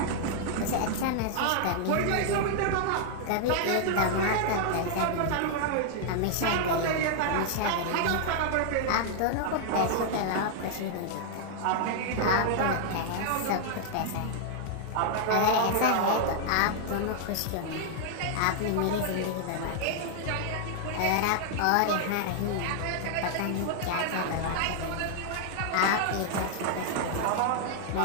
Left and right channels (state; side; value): different; both; correlation 0.00